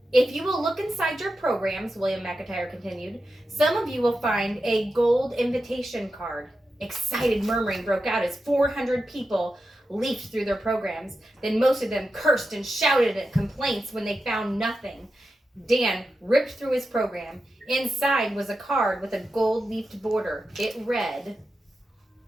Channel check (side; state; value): both; normal; correlation 0.90